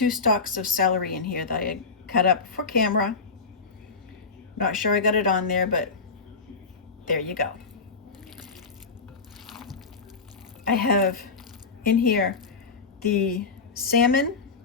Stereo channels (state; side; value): quieter; right; 4.6 dB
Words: stalks of celery in here that I had cut up for camera. Not sure I got it on there, but there you go. I have in here the salmon,